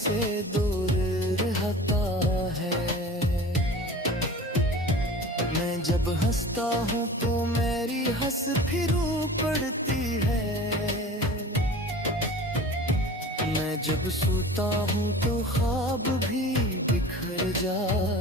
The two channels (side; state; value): both; normal; correlation 0.39